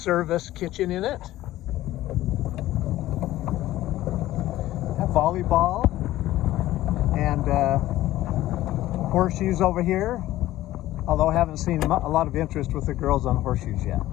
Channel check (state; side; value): quieter; right; 15.2 dB